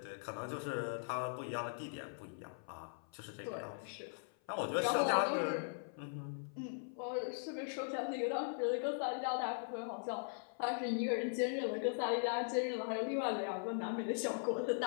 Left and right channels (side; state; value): right; silent; 51 dB below the other